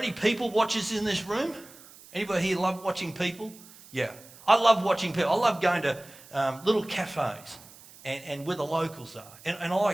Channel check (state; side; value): noise; right; hiss, 21 dB below the sound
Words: people watchers in this room? Anybody here love watching people? Yeah. I love watching people. I love going to little cafes and where the locals are. And I